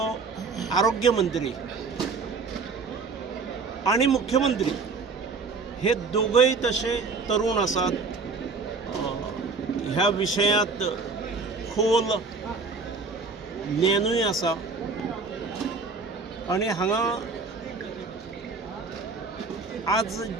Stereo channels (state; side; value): quieter; left; 4.4 dB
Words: आरोग्य मंत्री आनी मुख्यमंत्री हे दोगूय तशे तरूण आसात. ह्या विशयांत खोल ज्ञानूय आसा. आनी हांगा आज